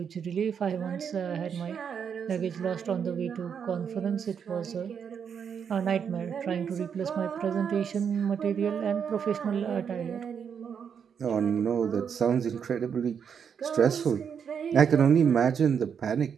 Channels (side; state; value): left; quieter; 7.3 dB